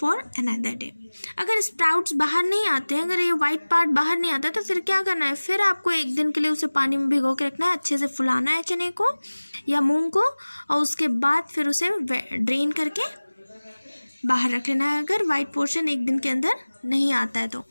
another day. अगर स्प्राउट्स बाहर नहीं आते हैं, अगर ये वाइट पार्ट बाहर नहीं आता, तो फिर क्या करना है, फिर आपको एक दिन के लिए उसे पानी में भिगो के रखना है, अच्छे से फुलाना है चने को या मूंग को, और उसके बाद फिर उसे ड्रेन करके बाहर रख लेना है. अगर वाइट पोर्शन एक दिन के अंदर नहीं आता है तो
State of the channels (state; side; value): inverted; both; correlation -1.00